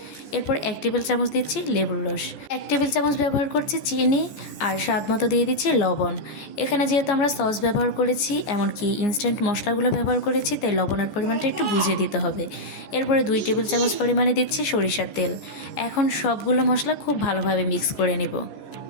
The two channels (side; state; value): right; late; 14 ms